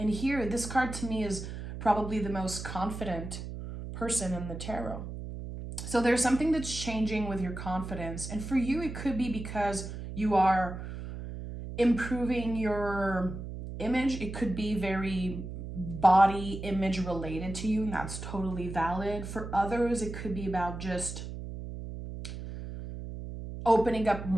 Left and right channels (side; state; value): right; noise; hum, 8 dB below the sound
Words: here, this card to me is probably the most confident person in the tarot. So there's something that's changing with your confidence. And for you, it could be because you are improving your image. It could be very body image related to you, and that's totally valid. For others, it could be about just opening up